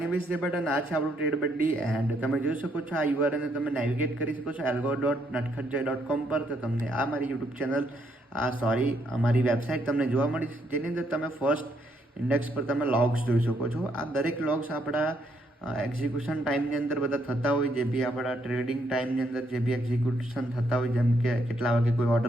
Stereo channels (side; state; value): both; normal; correlation 0.73